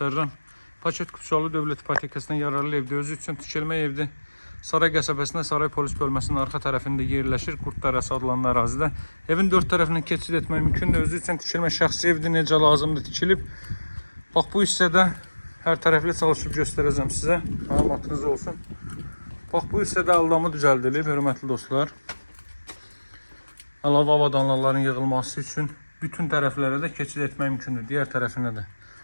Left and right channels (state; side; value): inverted; both; correlation -1.00